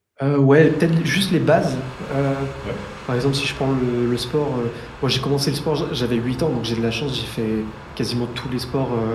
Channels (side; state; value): both; identical; correlation 1.00